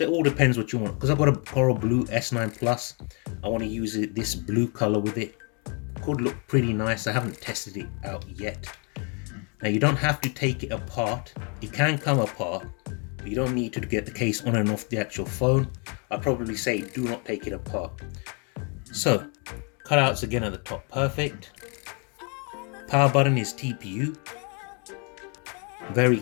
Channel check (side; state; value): right; quieter; 35.3 dB